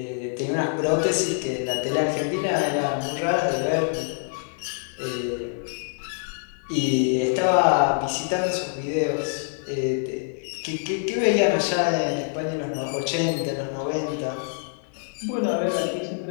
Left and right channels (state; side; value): silent; right; 62 dB below the other